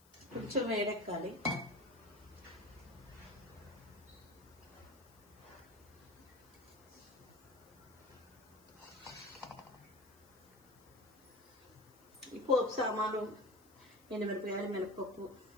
కొంచెం వేడెక్కాలి. ఈ పోపు సామాను: ఎండుమిరపకాయలు, మినపప్పు,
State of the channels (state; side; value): noise; left; hiss, 26 dB below the sound